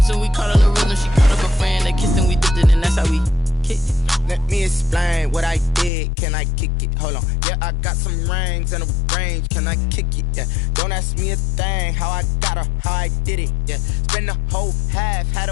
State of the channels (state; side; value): drops out; right; at 5.9 s